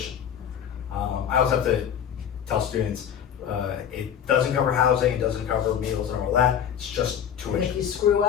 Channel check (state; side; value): quieter; right; 8.9 dB